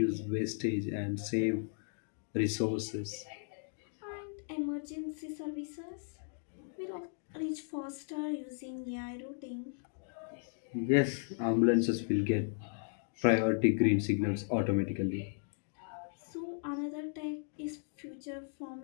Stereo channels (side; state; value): right; silent; digital silence